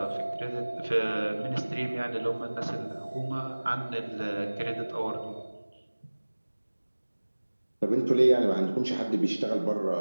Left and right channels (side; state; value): both; inverted; correlation -1.00